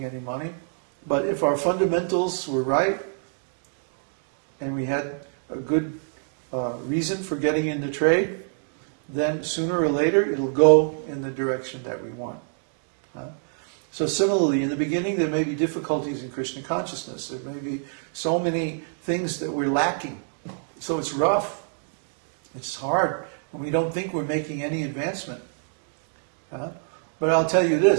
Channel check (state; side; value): silent; left; digital silence